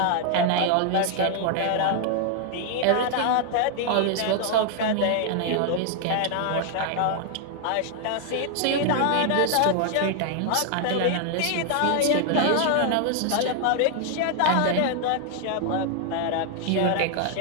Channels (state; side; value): different; both; correlation 0.00